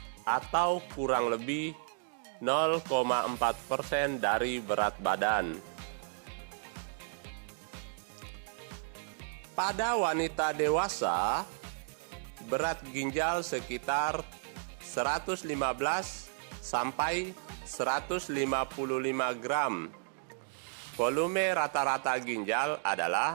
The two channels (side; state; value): left; silent; digital silence